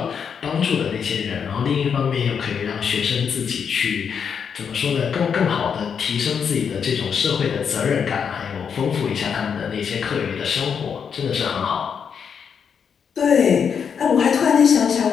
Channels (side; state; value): right; quieter; 7.0 dB